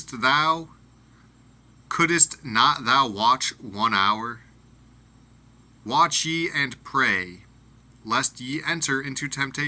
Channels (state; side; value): identical; both; correlation 1.00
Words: thou? Couldest not thou watch 1 hour? Watch ye and pray, lest ye enter into